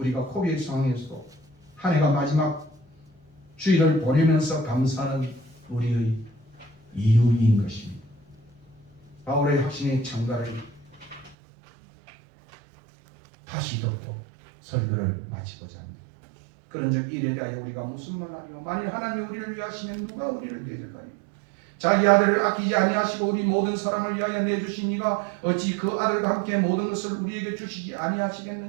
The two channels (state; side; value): drops out; left; at 11.4 s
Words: 코비의 상황에서도 한 해가 마지막 주일을 보내면서 감사하는 우리의 이유인 것입니다. 바울의 확신의 창가를 다시 듣고 설교를 마치고자 합니다. 그런즉 이에 대하여 우리가 무슨 말하리요? 만일 하나님이 우리를 위하시면 누가 우리를 대적하리요? 자기 아들을 아끼지 아니하시고 우리 모든 사람을 위하여 내주신 이가 어찌 그 아들과 함께 모든 것을 우리에게 주시지